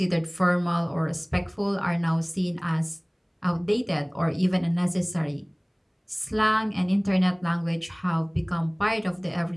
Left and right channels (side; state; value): both; identical; correlation 1.00